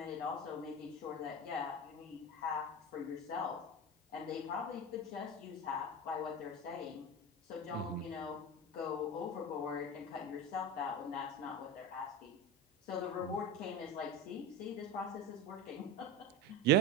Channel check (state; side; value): normal; both; correlation 0.24